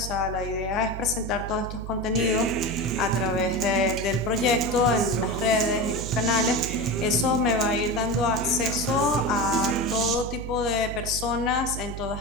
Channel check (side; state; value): right; noise; hum, 8 dB below the sound